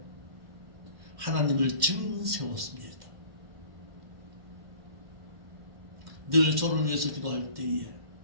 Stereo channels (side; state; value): left; late; 1.5 ms